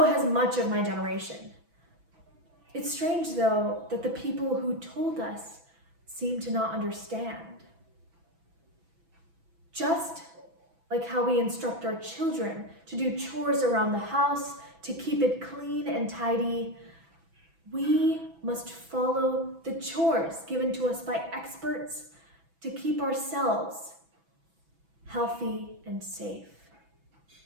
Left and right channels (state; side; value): late; left; 6.1 ms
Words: has much of my generation. It's strange, though, that the people who told us seem to not understand. Just like how we instruct our children to do chores around the house, to keep it clean and tidy, we must follow the chores given to us by experts to keep ourselves healthy and safe.